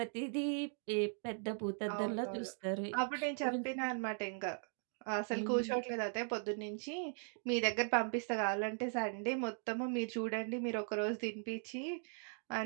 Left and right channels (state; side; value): silent; left; 52 dB below the other